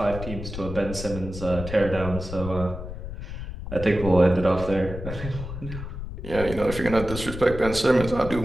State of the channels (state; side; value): noise; left; rumble, 8 dB below the sound